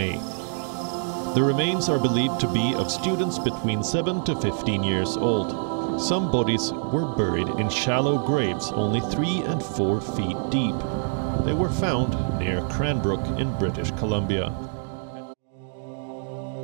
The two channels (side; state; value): left; silent; digital silence